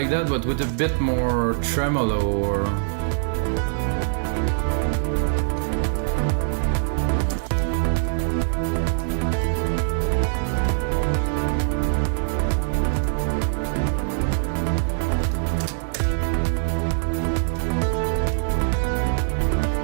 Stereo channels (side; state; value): left; silent; digital silence